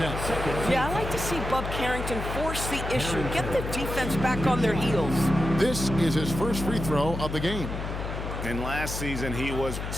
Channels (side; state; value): left; noise; hum, 5 dB below the sound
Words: Yeah, I like to see Bub Carrington force the issue. Get the defense back on their heels. This is his first free throw of the game. And last season, he was